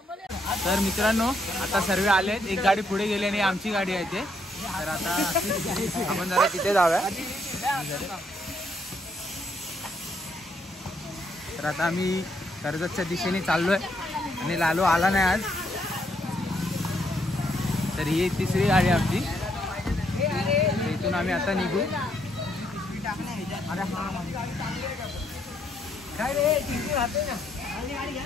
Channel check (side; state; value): both; normal; correlation 0.74